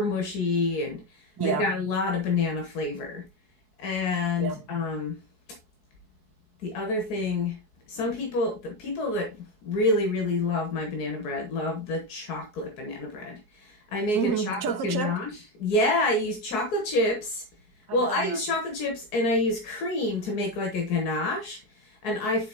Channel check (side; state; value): right; late; 4.7 ms